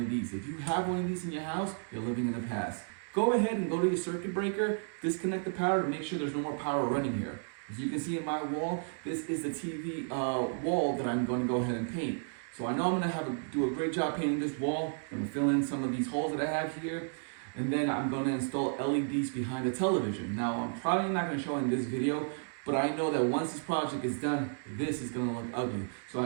of these. If you have one of these in your house, you're living in the past. Go ahead and go to your circuit breaker, disconnect the power to make sure there's no more power running here. As you can see in my wall, this is the TV wall that I'm going to go ahead and paint. So I know I'm going to do a great job painting this wall. I'm going to fill in some of these holes that I have here. And then I'm going to install LEDs behind the television. Now I'm probably not going to show in this video, but I know that once this project is done, this is going to look ugly. So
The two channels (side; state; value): left; silent; digital silence